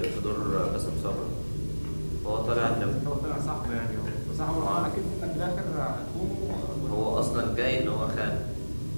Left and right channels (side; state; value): both; inverted; correlation -1.00